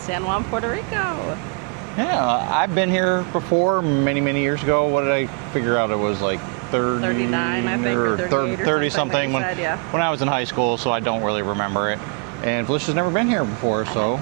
Juan, Puerto Rico. Yeah, I've been here before many years ago. What did I figure out? It was like 39, I think, or 38 or 30 something that you said, yeah. When I was in high school, so I don't really remember it. And Felicia's never been here before, so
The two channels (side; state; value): left; quieter; 34.6 dB